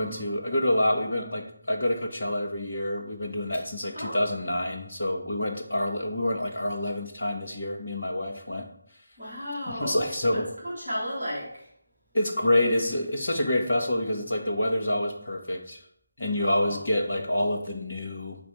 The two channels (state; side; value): inverted; both; correlation -0.90